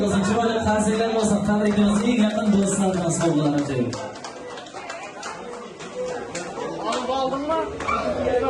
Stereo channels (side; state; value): both; identical; correlation 1.00